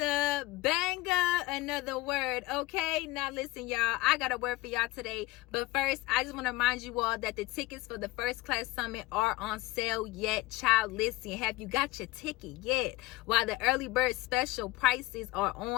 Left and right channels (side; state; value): right; quieter; 19.2 dB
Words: banger, another word. Okay, now listen, y'all, I got a word for y'all today, but first I just want to remind you all that the tickets for the First Class Summit are on sale yet. Child, listen, have you got your ticket yet? While the early bird special prices are